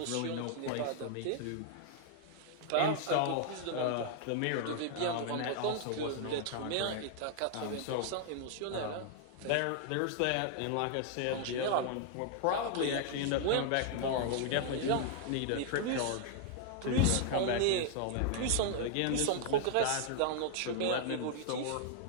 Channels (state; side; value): different; both; correlation 0.00